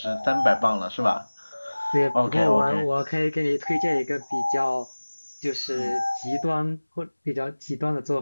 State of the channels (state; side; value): inverted; both; correlation -1.00